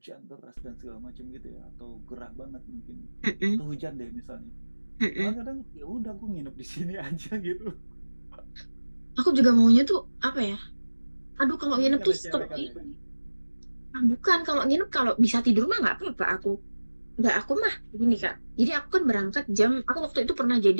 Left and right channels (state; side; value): inverted; both; correlation -1.00